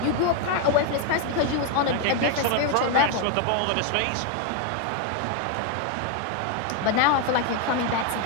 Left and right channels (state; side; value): different; both; correlation 0.01